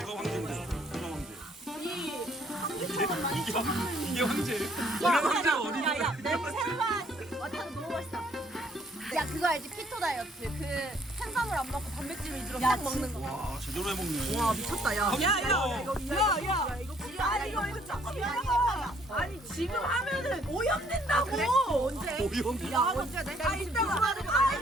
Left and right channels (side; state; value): both; normal; correlation 0.63